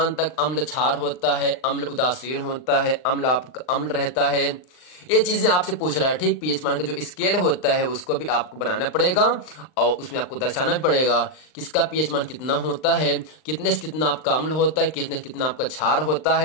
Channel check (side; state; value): right; late; 39 ms